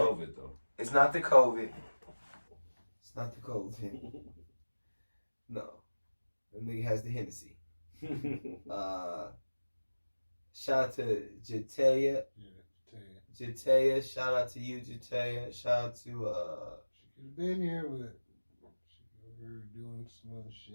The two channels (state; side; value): inverted; both; correlation -1.00